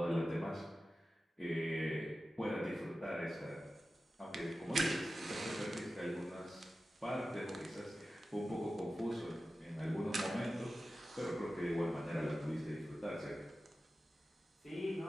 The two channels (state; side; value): normal; both; correlation 0.94